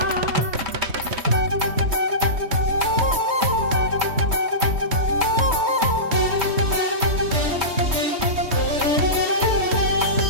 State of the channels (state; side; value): late; left; 3.2 ms